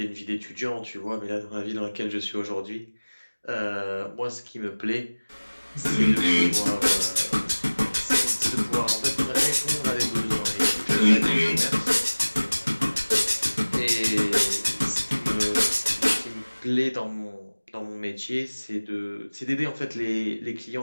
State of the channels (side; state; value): both; inverted; correlation -1.00